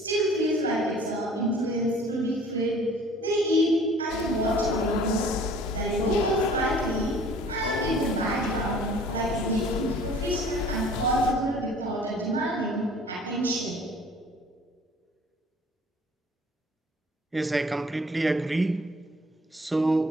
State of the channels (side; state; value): both; normal; correlation 0.51